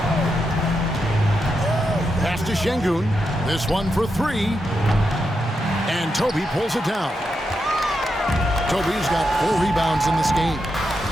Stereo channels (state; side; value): normal; both; correlation 0.85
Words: Pass to Şengün. This one for 3. And Toby pulls it down. Toby's got 4 rebounds in this game.